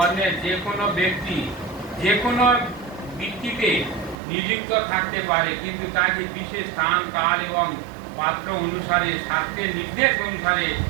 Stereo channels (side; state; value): left; drops out; at 4.2 s